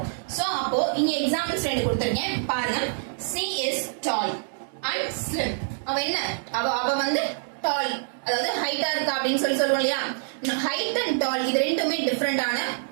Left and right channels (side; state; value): left; silent; digital silence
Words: சோ அப்போ இங்க எக்ஸாம்பிள்ஸ் ரெண்டு கொடுத்திருக்கேன் பாருங்க. she is tall and slim. அவ என்ன? அவ வந்து டால், அதாவது ஹைட்டா இருக்கா அப்படின்னு சொல்லுவோம் இல்லையா. ஹைட் அண்ட் டால் இது ரெண்டுமே டிஃபரெண்டான